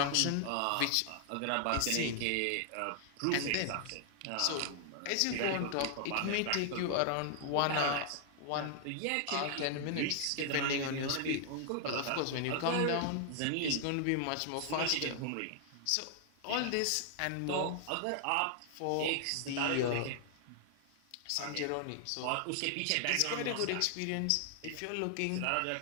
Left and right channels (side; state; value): both; different; correlation 0.00